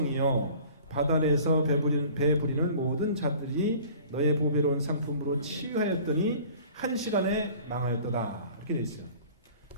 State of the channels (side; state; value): both; inverted; correlation -0.47